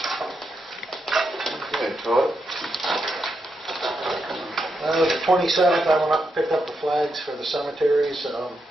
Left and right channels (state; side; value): normal; both; correlation 0.83